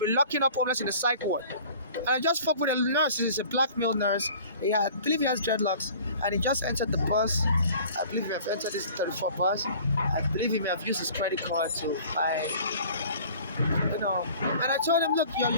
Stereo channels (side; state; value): both; inverted; correlation -0.48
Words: locking up homeless in the psych ward. And I just spoke with a nurse. He's a black male nurse. I believe he has dreadlocks. And he just entered the bus. I believe he may have entered this 34 bus. I believe he may have used his credit card to buy, And I told him, look,